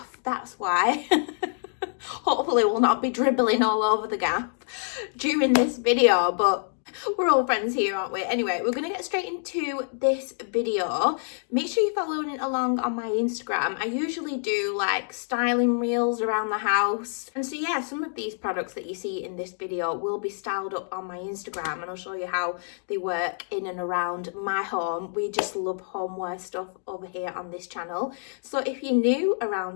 that's why. Hopefully we'll not be dribbling all over the gap during this video, but we're all friends here, aren't we? Anyway, we're going to get straight into this video. Make sure you're following along on my Instagram. I usually do like styling reels around the house. And so yeah, some of these products that you see in this video will be styled up on my Instagram, and I'll show you how they work in and around my home. We just love homeware stuff over here on this channel. So if you're new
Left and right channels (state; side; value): silent; right; digital silence